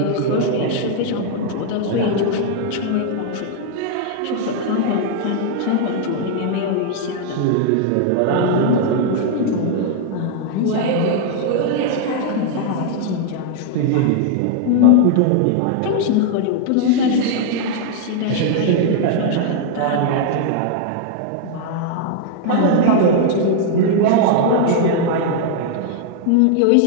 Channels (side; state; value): both; different; correlation 0.00